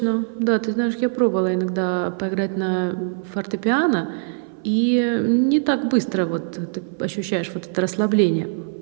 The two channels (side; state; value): left; silent; 57 dB below the other